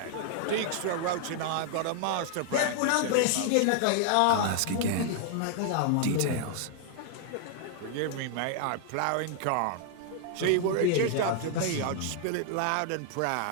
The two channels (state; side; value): different; both; correlation 0.00